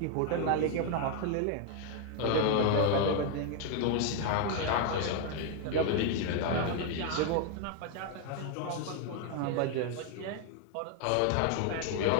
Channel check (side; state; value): both; different; correlation 0.01